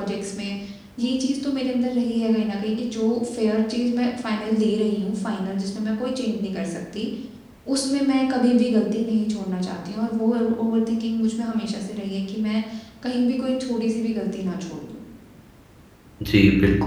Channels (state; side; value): identical; both; correlation 1.00